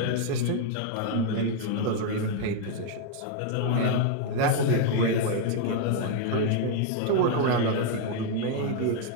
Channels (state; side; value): different; both; correlation 0.00